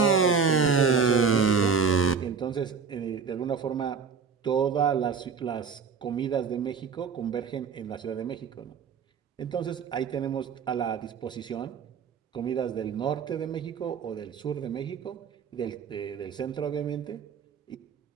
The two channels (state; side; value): quieter; left; 5.8 dB